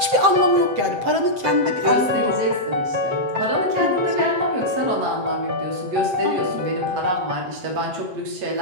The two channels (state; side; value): late; left; 7.8 ms